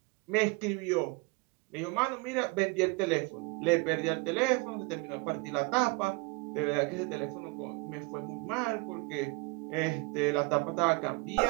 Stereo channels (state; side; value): quieter; left; 26.4 dB